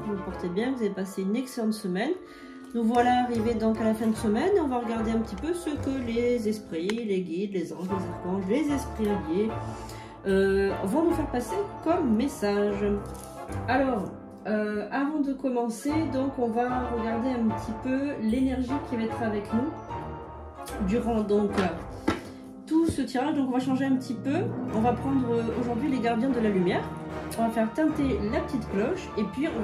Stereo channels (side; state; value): both; identical; correlation 1.00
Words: vous vous portez bien, que vous avez passé une excellente semaine. Nous voilà arrivés donc à la fin de semaine et on va regarder un petit peu ce que les esprits, les guides, les anges, les archanges, les esprits alliés vont nous faire passer comme message. Alors, avant de commencer, donc on va regarder un petit peu l'énergie qui va être avec nous durant donc tout ce tirage. Donc on va changer un petit peu. On va prendre aujourd'hui les gardiens de la lumière. On va faire teinter la petite cloche et puis on